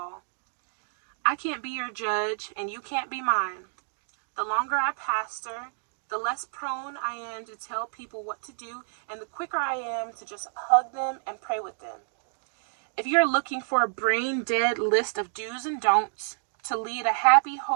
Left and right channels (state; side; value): silent; left; digital silence